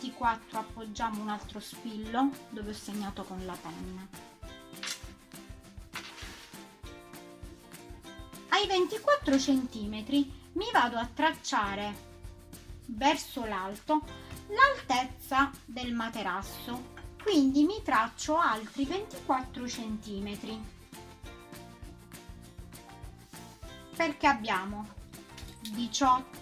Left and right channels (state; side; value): identical; both; correlation 1.00